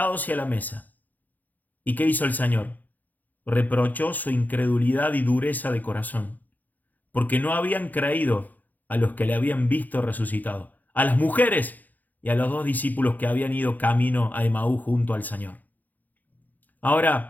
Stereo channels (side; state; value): right; late; 0.083 ms